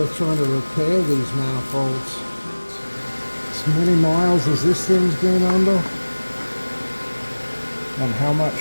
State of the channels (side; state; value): both; inverted; correlation -1.00